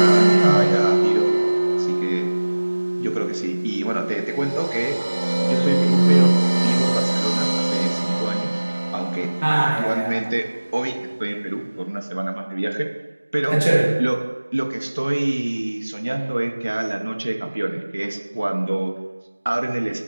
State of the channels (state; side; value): inverted; both; correlation -1.00